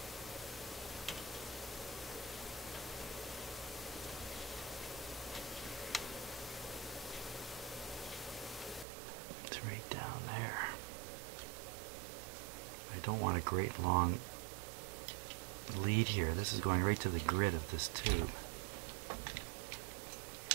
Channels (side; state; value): left; drops out; at 8.8 s